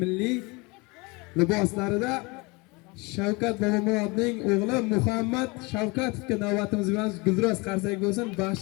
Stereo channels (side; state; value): right; quieter; 26.5 dB